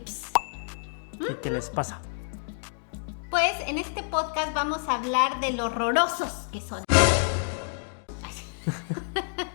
¿Qué les pasa? Pues en este podcast vamos a hablar de lo horrorosos que son.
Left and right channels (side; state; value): right; silent; digital silence